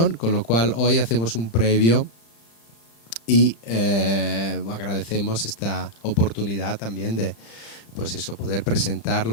con lo cual hoy hacemos un previo y agradecemos esta oportunidad también de poder presentar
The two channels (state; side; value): late; right; 35 ms